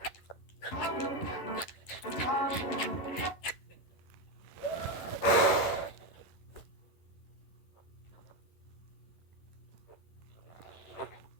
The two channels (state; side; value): late; right; 11 ms